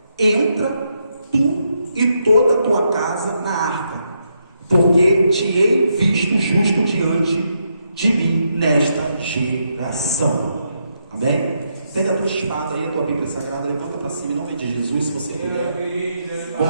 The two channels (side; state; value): both; inverted; correlation -0.80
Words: entra tu e toda a tua casa na arca, porque te hei visto justo diante de mim nesta geração. Amém? Pega a tua espada aí, a tua Bíblia Sagrada, levanta para cima em nome de Jesus, se você puder.